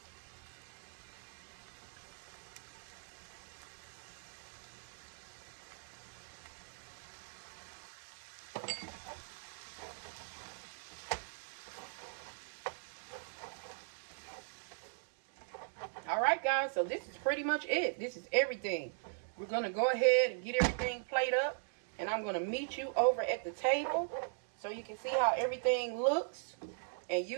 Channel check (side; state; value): left; silent; digital silence